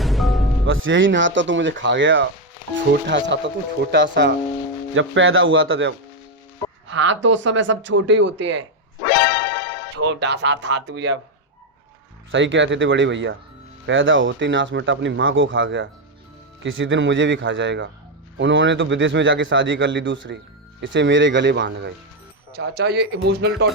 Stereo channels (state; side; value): normal; both; correlation 0.05